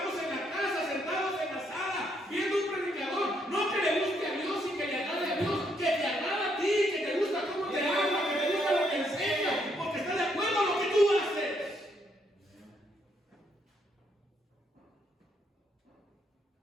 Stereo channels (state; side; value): normal; both; correlation 0.73